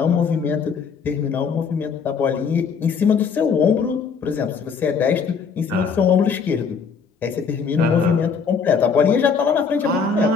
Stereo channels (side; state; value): right; quieter; 5.9 dB